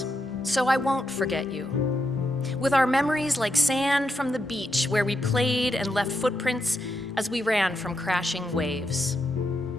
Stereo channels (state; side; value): normal; both; correlation 0.82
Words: so I won't forget you, with our memories like sand from the beach where we played and left footprints as we ran from crashing waves.